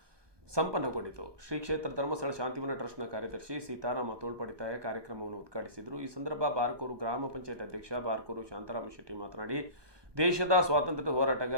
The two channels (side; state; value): left; late; 1.2 ms